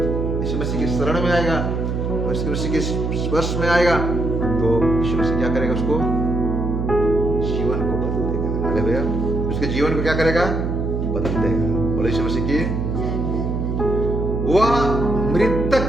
यीशु मसीह की शरण में आएगा, यीशु मसीह के स्पर्श में आएगा, तो यीशु मसीह क्या करेगा? उसको जीवन को बदल देगा। हालेलुया। उसके जीवन को क्या करेगा? बदल देगा। बोले यीशु मसीह की। वह मृतक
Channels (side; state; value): right; noise; hum, 1 dB below the sound